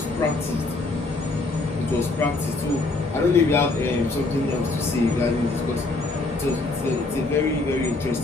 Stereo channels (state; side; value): quieter; right; 3.3 dB